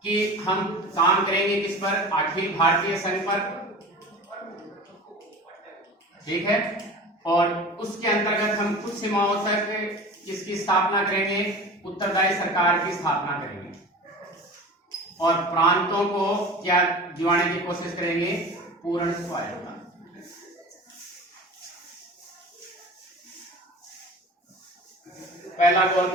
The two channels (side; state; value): both; normal; correlation 0.36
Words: कि हम काम करेंगे किस पर? अखिल भारतीय संघ पर, ठीक है, और उसके अंतर्गत हम कुछ सीमाओं तक इसकी स्थापना करेंगे, उत्तरदायी सरकार की स्थापना करेंगे और प्रांतों को क्या दिवाने की कोशिश करेंगे? पूर्ण स्वायत्तता। पहला